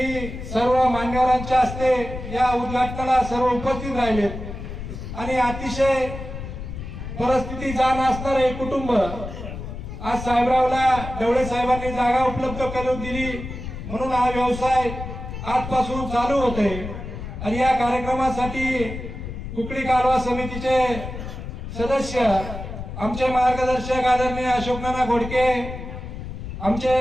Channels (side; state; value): left; noise; rumble, 8 dB below the sound